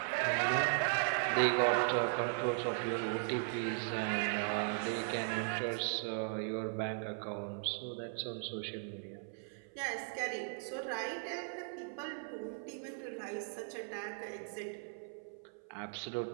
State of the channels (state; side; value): silent; left; 52 dB below the other